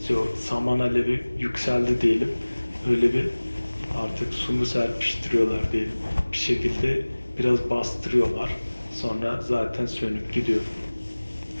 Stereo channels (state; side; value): inverted; both; correlation -1.00